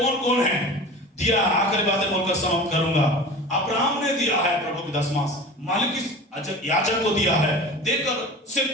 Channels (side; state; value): both; normal; correlation 0.36